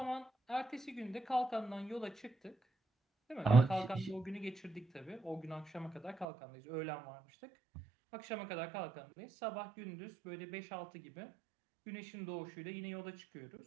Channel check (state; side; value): drops out; left; at 6.2 s